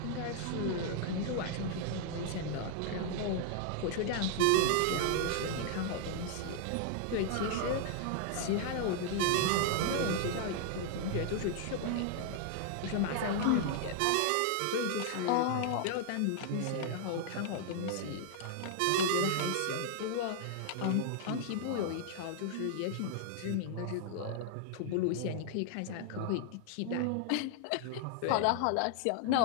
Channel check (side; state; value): both; different; correlation 0.00